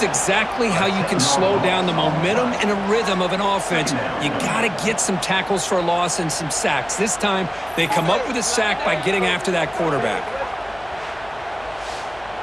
exactly how you can slow down the momentum and a rhythm of an offense. You got to get some tackles for a loss and some sacks. This time, they come up with a sack by getting after that quarterback.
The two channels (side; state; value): left; noise; hum, 24 dB below the sound